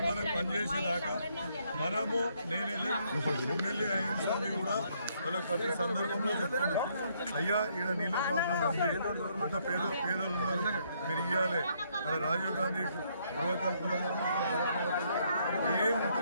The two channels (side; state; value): both; inverted; correlation -0.70